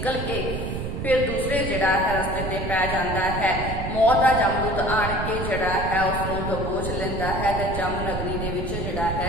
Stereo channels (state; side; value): noise; right; rumble, 4 dB below the sound